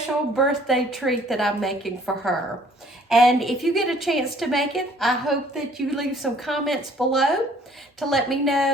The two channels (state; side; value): normal; both; correlation 0.57